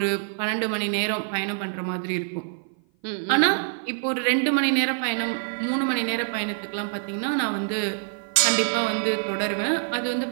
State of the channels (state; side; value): silent; left; 55 dB below the other